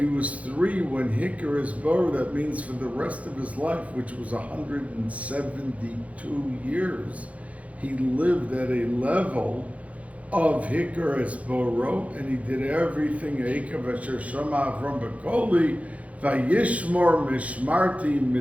was 3 when Hikar is Bor, that means for the rest of his life, which was 172 years, he lived at a level of Hikar es Boro, and he did everything. Eikev asher shama Avram Bakoli, vayishmor mishmarti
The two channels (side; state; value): left; late; 0.066 ms